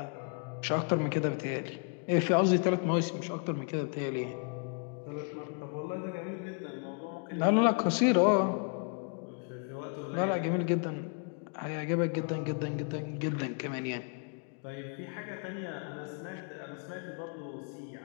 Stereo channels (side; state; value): right; quieter; 39.8 dB